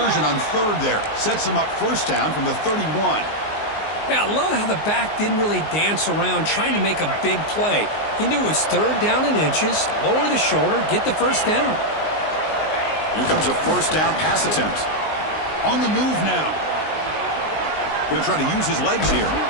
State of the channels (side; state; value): right; late; 19 ms